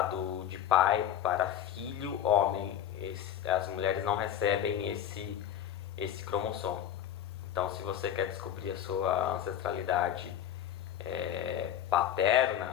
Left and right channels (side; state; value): right; quieter; 10.5 dB